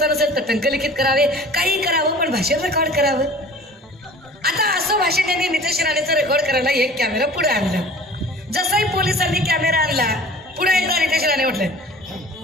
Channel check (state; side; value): normal; both; correlation 0.45